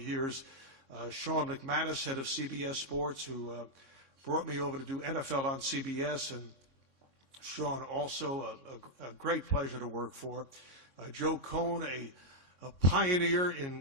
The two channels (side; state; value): right; late; 3.6 ms